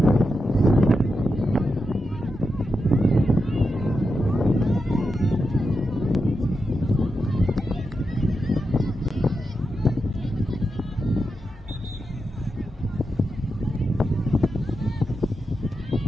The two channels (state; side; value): normal; both; correlation 0.88